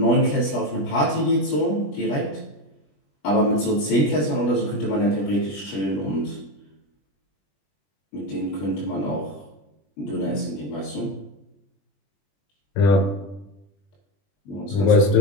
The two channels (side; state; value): right; late; 20 ms